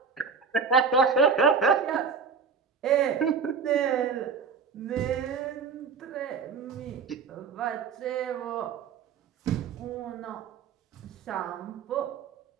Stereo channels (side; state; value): left; quieter; 5.7 dB